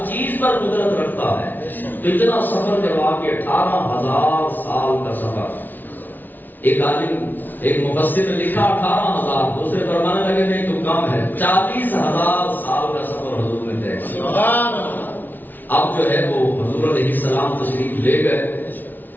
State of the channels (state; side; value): late; right; 0.086 ms